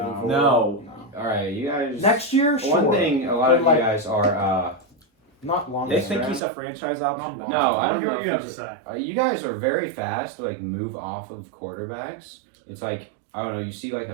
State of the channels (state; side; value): drops out; left; at 6.4 s